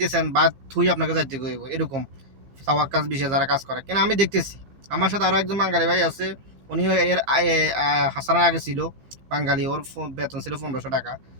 ভাত থুই আপনাকে যাইতে হইব, এরকম সাওয়াক্কাস বিষয়ে যারা কাজ করে। কেন আমি দেখতেছি, আমার সাথে আরও একজন বাঙালি ভাই আছে, উনিও এর হাসানার আগে ছিল বাঙালি, ওর বেতন ছিল ১৫০০ টাকা।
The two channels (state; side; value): late; left; 15 ms